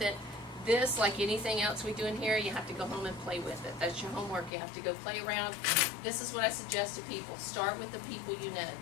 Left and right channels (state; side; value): drops out; right; at 4.5 s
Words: it. This, like anything else we do in here, you have to go home and play with it. That's your homework. You have to go play around. This is what I suggest to people. Start with the people you know.